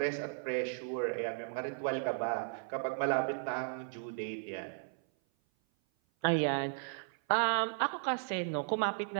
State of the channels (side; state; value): left; silent; 54 dB below the other